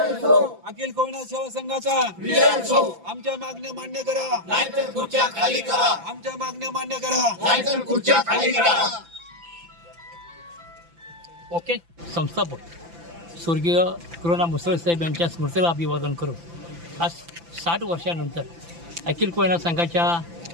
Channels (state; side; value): late; left; 5.9 ms